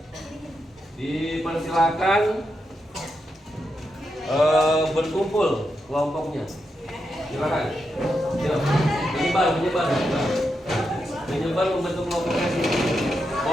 Dipersilakan berkumpul kelompoknya. Silakan. Yuk, menyebar membentuk kelompoknya sini.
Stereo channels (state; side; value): normal; both; correlation 0.85